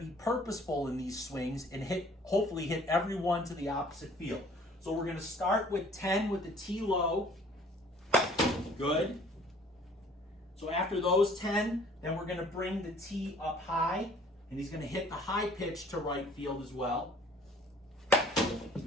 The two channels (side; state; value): both; normal; correlation 0.54